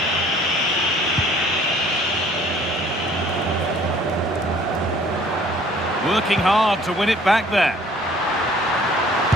Working hard to win it back there.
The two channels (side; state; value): both; normal; correlation 0.55